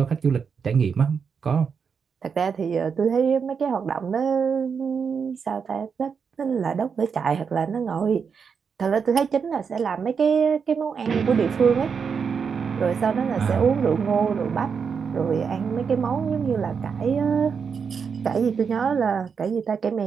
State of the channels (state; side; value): quieter; left; 6.2 dB